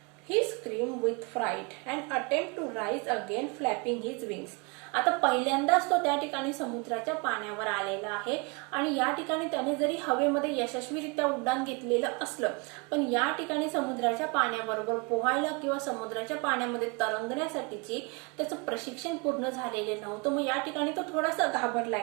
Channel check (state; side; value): quieter; left; 30.5 dB